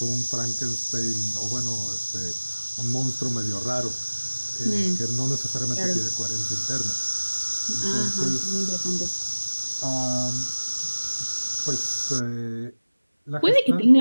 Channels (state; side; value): inverted; both; correlation -1.00